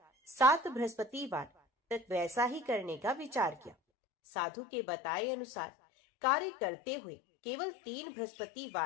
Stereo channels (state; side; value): drops out; right; at 3.8 s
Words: 7 बृहस्पतिवार तक वैसा ही करने का विचार किया। साधु के बताए अनुसार कार्य करते हुए केवल 3